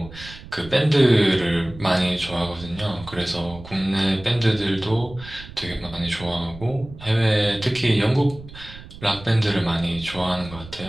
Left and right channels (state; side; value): noise; right; rumble, 16 dB below the sound